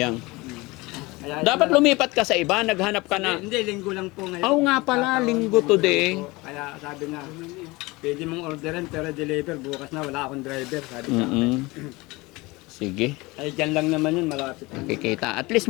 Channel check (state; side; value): quieter; right; 22.8 dB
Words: Kaya, Dapat lumipat ka sa iba, naghanap ka na. Hindi, linggo lang po ngayon. Oo nga pala, linggo today. Kaya sabi na, pwede mong orderin pero deliver bukas na, wala akong driver. Sabi sa akin. Sige, Ay, dyan lang naman yun, malapit. nakikita. At least